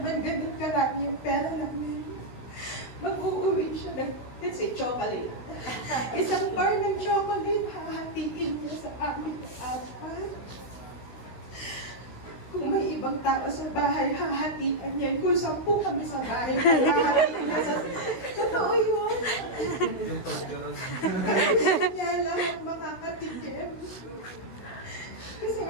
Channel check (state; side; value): late; right; 16 ms